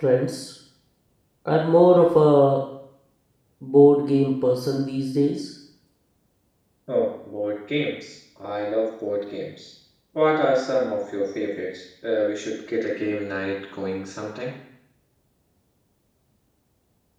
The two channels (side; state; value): both; identical; correlation 1.00